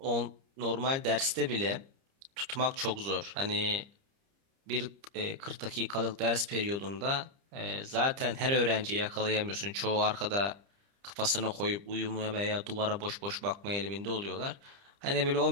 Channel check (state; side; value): late; left; 30 ms